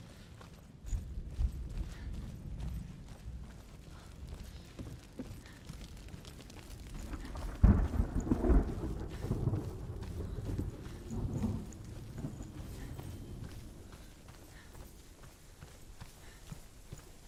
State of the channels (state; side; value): identical; both; correlation 1.00